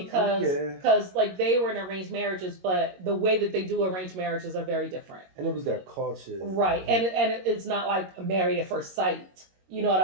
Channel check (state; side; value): late; left; 22 ms